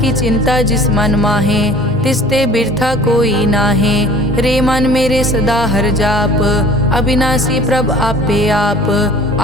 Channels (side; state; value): both; normal; correlation 0.47